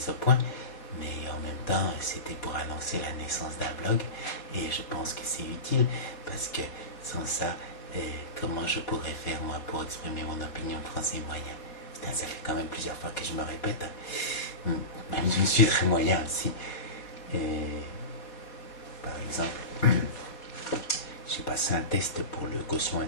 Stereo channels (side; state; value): right; late; 4.2 ms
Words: au point, mais en même temps c'était pour annoncer la naissance d'un blog, et je pense que c'est utile, parce que sans ça, comment je pourrais faire moi pour exprimer mon opinion de français moyen? Putain, ça fait quand même plusieurs fois que je me répète, même je suis très moyen aussi. Par exemple, j'ai passé un test pour le quotient